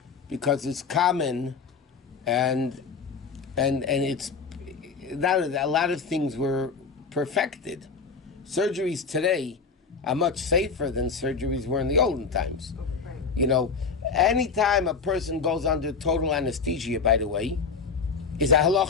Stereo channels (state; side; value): quieter; right; 5.1 dB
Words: because it's common, and it's not a lot of things were perfected. Surgeries today are much safer than surgeries were in the olden times. Anytime a person goes under total anesthesia, by the way, is a